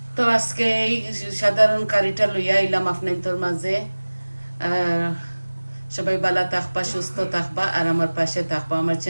তো আজকে এই সাধারণ কারিটা লইয়া আইলাম আপনাদের মাঝে। সবাই ভালো থাকবা, সুস্থ থাকবা, আর আমার পাশে থাকবা। আমার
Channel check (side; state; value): both; inverted; correlation -1.00